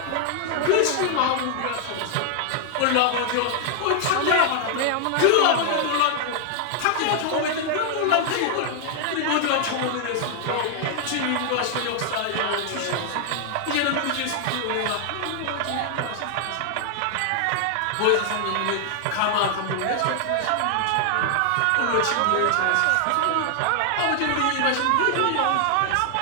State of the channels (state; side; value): different; both; correlation 0.00